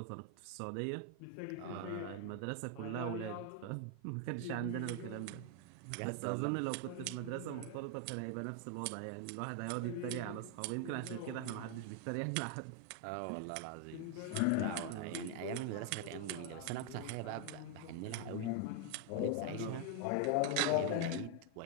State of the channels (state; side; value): different; both; correlation 0.00